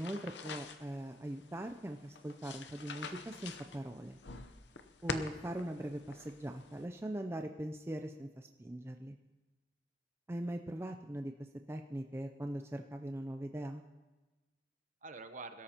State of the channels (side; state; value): both; normal; correlation 0.79